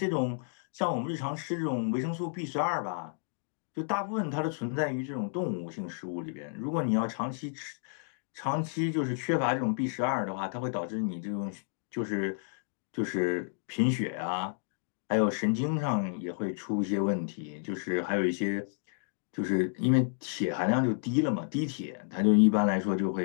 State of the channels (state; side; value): silent; right; digital silence